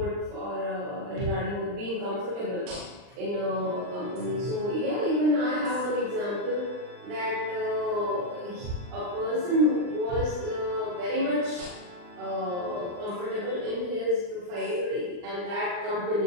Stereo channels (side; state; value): left; late; 39 ms